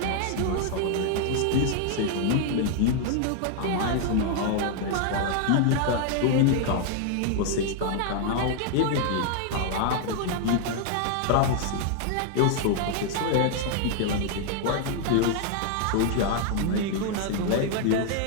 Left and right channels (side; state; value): both; different; correlation 0.00